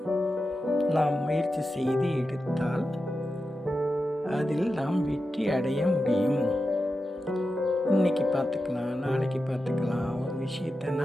நாம் முயற்சி செய்து எடுத்தால் அதில் நாம் வெற்றி அடைய முடியும். இன்னைக்கு பார்த்துக்கலாம், நாளைக்கு பார்த்துக்கலாம், ஒரு விஷயத்தை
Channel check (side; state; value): both; normal; correlation 0.91